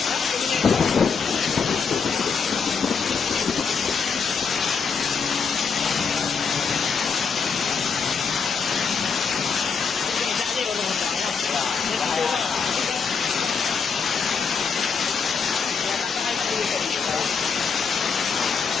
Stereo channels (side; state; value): right; quieter; 5.7 dB